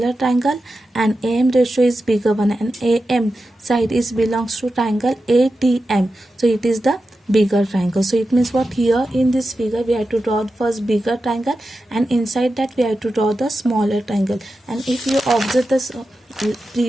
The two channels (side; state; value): both; normal; correlation 0.91